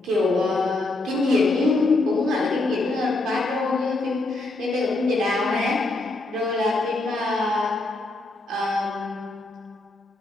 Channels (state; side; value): quieter; right; 3.0 dB